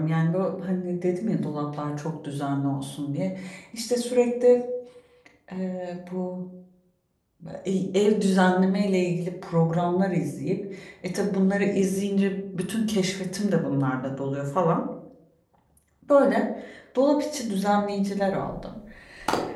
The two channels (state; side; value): identical; both; correlation 1.00